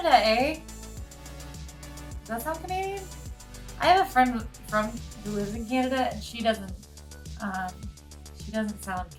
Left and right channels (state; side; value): identical; both; correlation 1.00